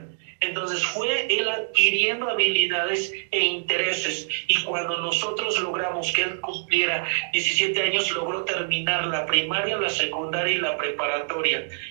Entonces fue él adquiriendo habilidades e intereses, y cuando nosotros logramos que él cumpliera 17 años, logró terminar la primaria, la secundaria y la preparatoria.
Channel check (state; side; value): silent; left; digital silence